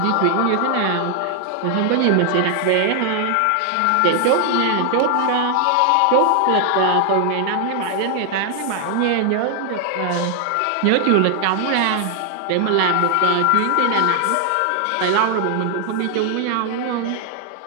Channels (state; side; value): different; both; correlation 0.00